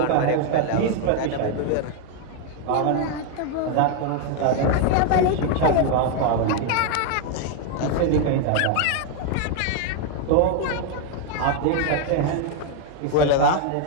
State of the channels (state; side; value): different; both; correlation 0.01